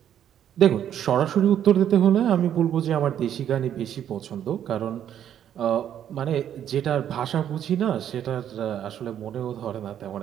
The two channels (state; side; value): quieter; left; 10.0 dB